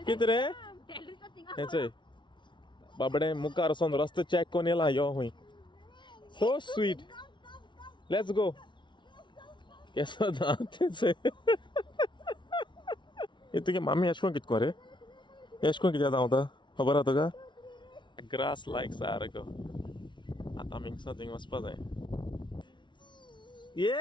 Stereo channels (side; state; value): right; late; 0.23 ms